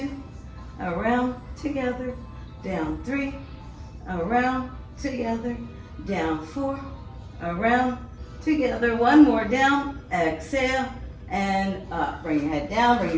around, together, down 3, around, together, down 4, around, together. 1 more, down, exhale, and up. Bring your head down, bring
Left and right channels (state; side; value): identical; both; correlation 1.00